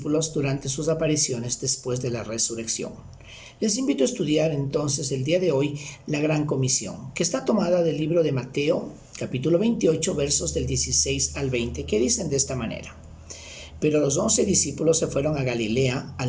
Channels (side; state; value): both; identical; correlation 1.00